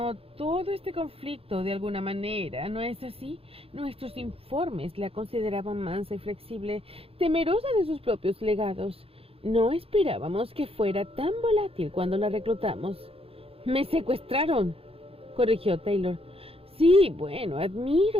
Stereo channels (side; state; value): left; late; 0.28 ms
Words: todo este conflicto de alguna manera, ¿no es así? Nuestros informes la consideraban mansa y flexible, temerosa de sus propios legados. No esperábamos que fuera tan volátil cuando la reclutamos. Me secuestraron, corrigió Taylor. Sí, bueno,